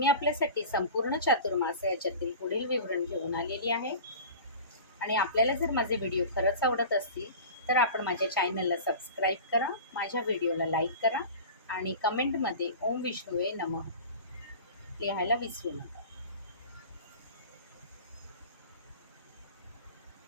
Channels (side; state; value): both; inverted; correlation -0.36